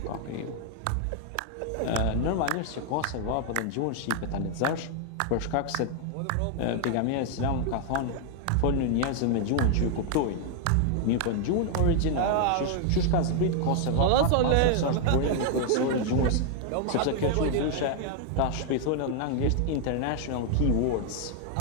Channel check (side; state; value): both; different; correlation 0.00